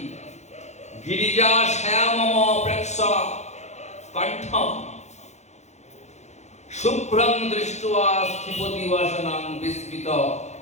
গিরিজা শ্যামম প্রেক্ষ কণ্ঠম শুভ্রং দৃष्ट्वा স্থিপতি বাসনাং বিস্মিত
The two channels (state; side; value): late; right; 0.33 ms